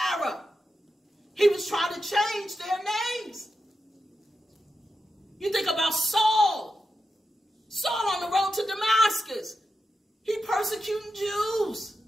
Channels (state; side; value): normal; both; correlation 0.88